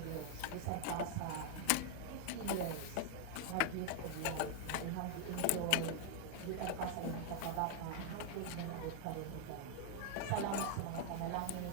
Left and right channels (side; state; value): both; different; correlation 0.00